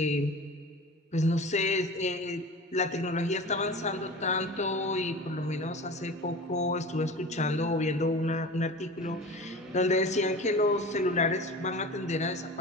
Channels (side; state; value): both; normal; correlation 0.35